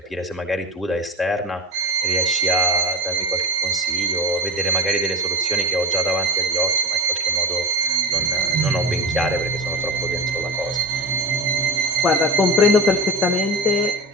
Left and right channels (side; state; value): both; normal; correlation 0.25